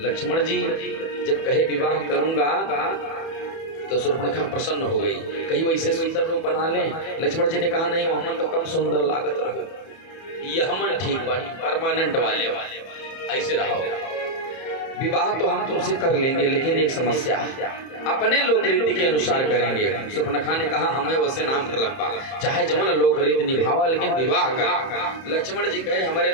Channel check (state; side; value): late; right; 31 ms